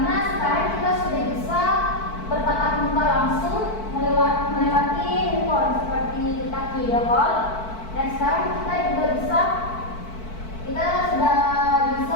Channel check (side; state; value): right; late; 4.5 ms